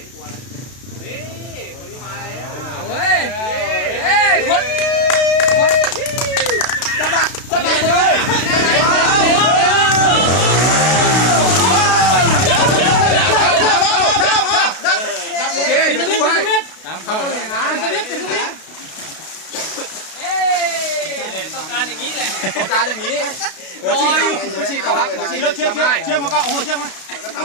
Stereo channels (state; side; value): late; right; 32 ms